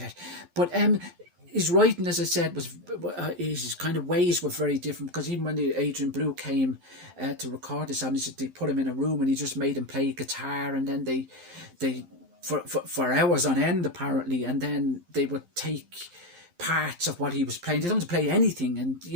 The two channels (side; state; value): left; late; 11 ms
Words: But his writing, as I said, was his kind of ways were very different, because even when the Adrian Blue came to record this album, they put him in a room and he just made him play guitar, and then they for hours on end apparently, and then they would take parts of what he was playing. They don't have to play anything, and